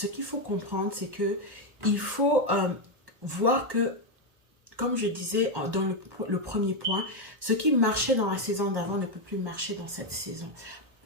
qu'il faut comprendre, c'est que il faut voir que, comme je disais dans le premier point, ce qui marchait dans la saison d'avant ne peut plus marcher dans cette saison.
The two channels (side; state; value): left; late; 1.1 ms